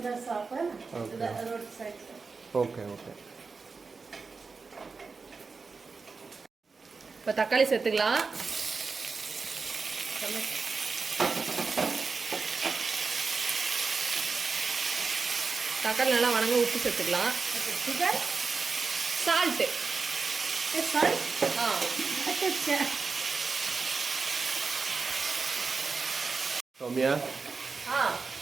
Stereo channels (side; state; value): left; quieter; 4.6 dB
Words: The shop, Okay. the roadside. Okay. இப்போ தக்காளி சேர்த்துக்கலாம். தக்காளி நல்லா வணங்க உப்பு சேர்த்துக்கலாம். Sugar? Salt. Salt? अच्छा. Soumya,